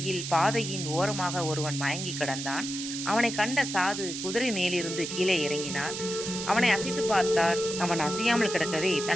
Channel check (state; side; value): noise; right; hiss, 6 dB below the sound